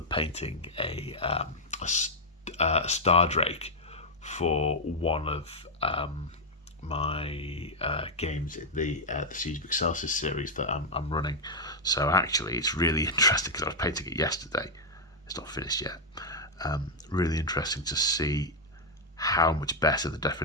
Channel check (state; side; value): normal; both; correlation -0.01